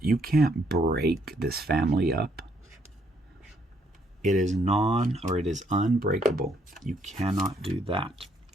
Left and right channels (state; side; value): normal; both; correlation 0.70